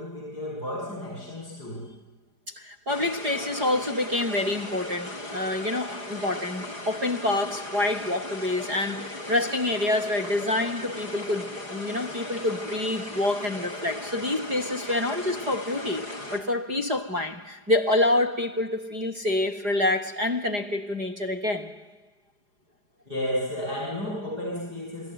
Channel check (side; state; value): left; late; 4.9 ms